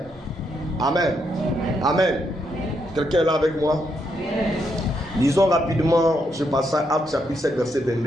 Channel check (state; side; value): normal; both; correlation 0.78